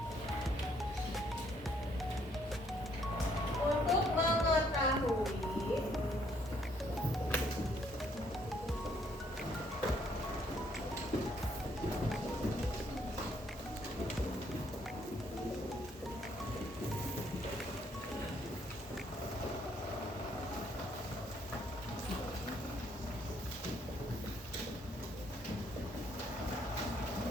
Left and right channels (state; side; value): normal; both; correlation 0.68